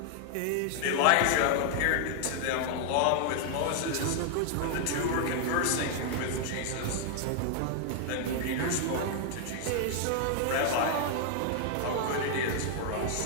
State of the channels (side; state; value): both; different; correlation 0.00